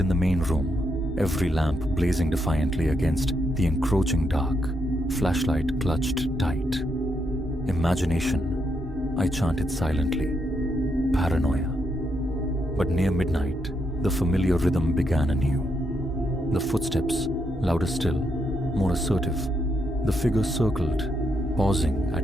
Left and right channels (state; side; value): normal; both; correlation 0.79